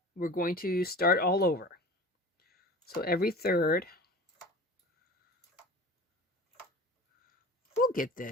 We're going to start all over. So every third, we'll get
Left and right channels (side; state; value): both; normal; correlation 0.37